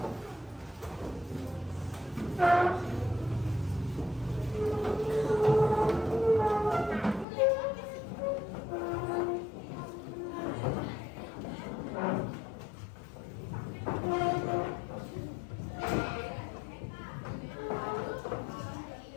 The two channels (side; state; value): right; drops out; at 7.2 s